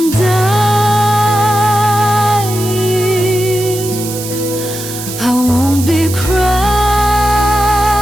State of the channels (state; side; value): noise; right; hiss, 9 dB below the sound